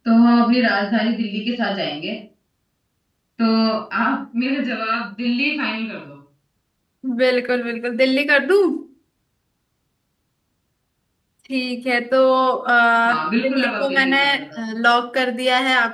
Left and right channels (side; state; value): both; identical; correlation 1.00